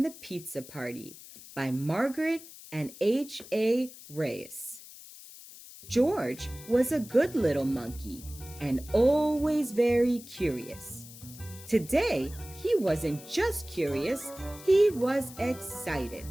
the Pizza Party by Margret and H. Reyes. George was a good little monkey and always very curious. Today, he wasn't just curious, he was excited.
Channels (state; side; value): noise; left; hiss, 17 dB below the sound